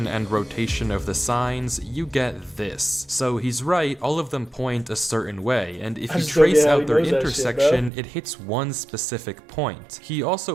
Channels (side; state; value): left; drops out; at 7.9 s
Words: and rotation of the signs, you get this. So he's right, all of them point a certain way, and if I you just don't trace get how out he their knows that shit, intersection, it hits one specific point. He